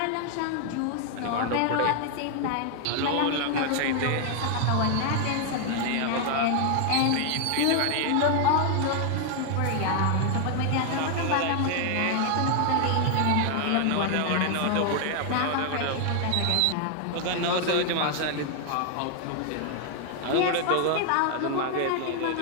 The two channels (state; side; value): different; both; correlation 0.00